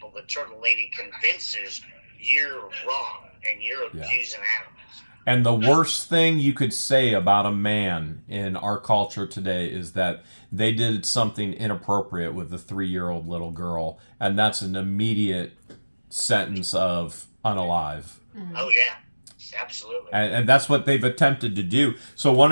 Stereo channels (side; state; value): both; inverted; correlation -1.00